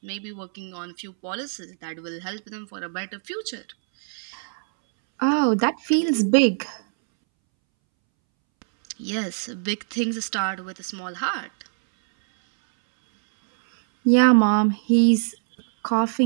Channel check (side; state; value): left; silent; 63 dB below the other